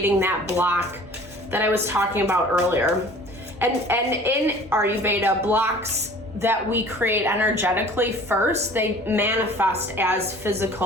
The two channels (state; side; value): normal; both; correlation 0.47